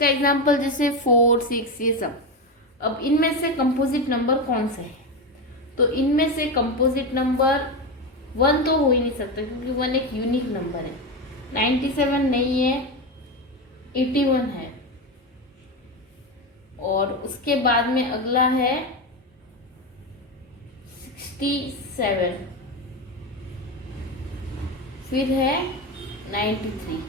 एग्जाम्पल जैसे 4, 6 ये सब। अब इनमें से कंपोजिट नंबर कौन सा है? तो इनमें से कंपोजिट नंबर 1 तो हो ही नहीं सकता क्योंकि 1 एक यूनिक नंबर है। 97 नहीं है, 81 है और उसके बाद में अगला है 67, फिर है 93।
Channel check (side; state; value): both; normal; correlation 0.15